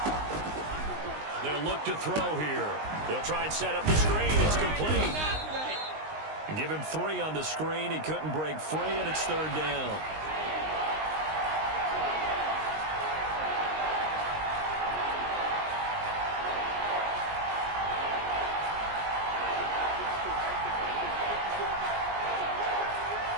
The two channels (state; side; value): late; left; 19 ms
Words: They'll look to throw here. They'll try and set up the screen. It's complete. And give him 3 on the screen. He couldn't break free, and it's 3rd down.